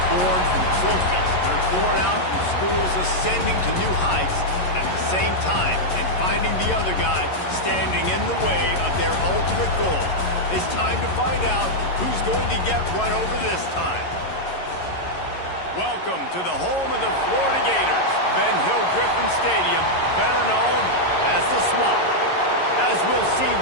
born from trophies. They're born out from schools ascending to new heights at the same time and finding the other guy standing in the way of their ultimate goal. It's time to find out who's going to get one over this time. Welcome to the home of the Florida Gators, Ben Hill Griffin Stadium, better known as the Swamp. As we'll see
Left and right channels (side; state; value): right; late; 11 ms